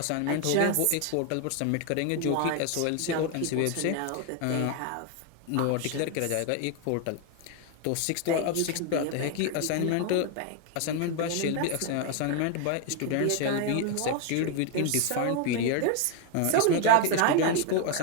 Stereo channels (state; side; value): different; both; correlation 0.01